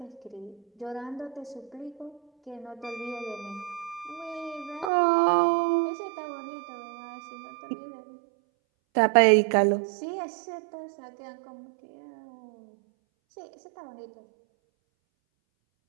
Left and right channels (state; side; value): drops out; left; at 4.9 s